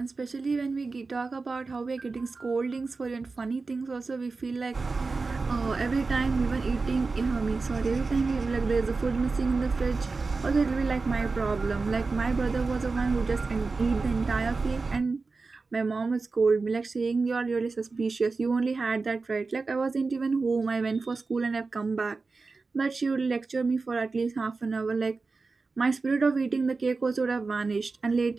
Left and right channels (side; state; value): left; quieter; 4.0 dB